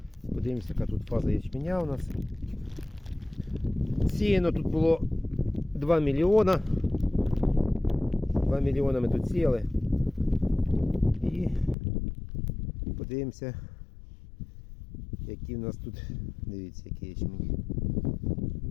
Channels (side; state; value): right; drops out; at 11.8 s